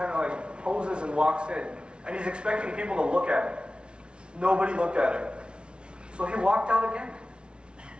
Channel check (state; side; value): late; left; 0.057 ms